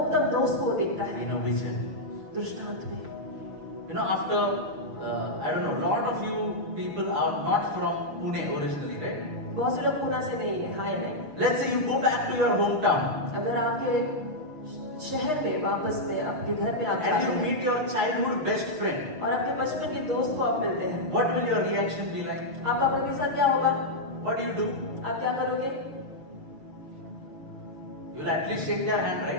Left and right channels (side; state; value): left; late; 6.6 ms